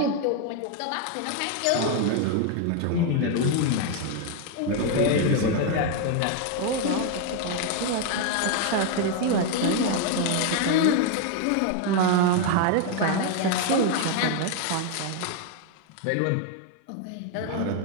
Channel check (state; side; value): different; both; correlation 0.01